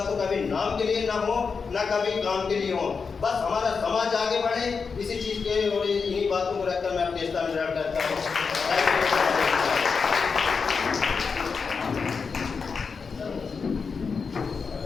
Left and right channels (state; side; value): quieter; right; 5.3 dB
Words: तो कभी नाम के लिए ना हो, ना कभी काम के लिए हो। बस हमारा समाज आगे बढ़े, इसी चीज के और इन्हीं बातों को रखकर मैं अपने स्थान ग्रहण करता हूँ।